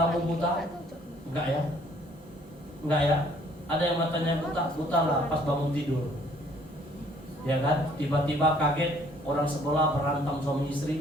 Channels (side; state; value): both; normal; correlation 0.60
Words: buta? Enggak ya? Enggak ya? Ada yang matanya buta lah pas bangun tidur. Ya kan? Tiba-tiba kaget, orang sebelah berantem suami